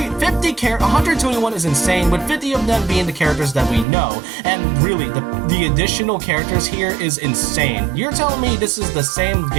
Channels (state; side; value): drops out; left; at 3.9 s